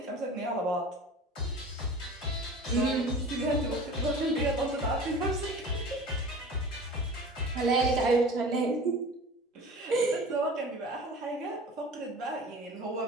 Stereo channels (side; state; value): both; normal; correlation 0.39